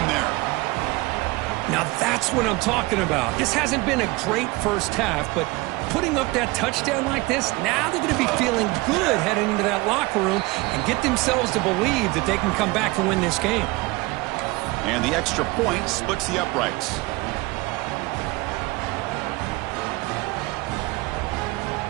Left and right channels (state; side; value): quieter; left; 22.8 dB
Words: there. Now that's what I'm talking about. This hasn't been a great 1st half, but putting up that touchdown like this, now they're going to be feeling good heading into that locker room and get themselves to believe that they can come back and win this game. And the extra point splits the uprights.